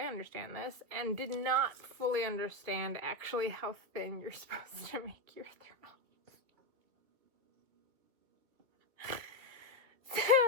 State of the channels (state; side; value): late; left; 2.3 ms